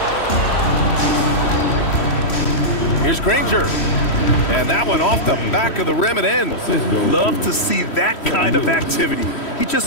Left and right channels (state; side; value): late; right; 3.1 ms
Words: Here's Granger. And that one off the back of the rim and in. Love to see that kind of activity. He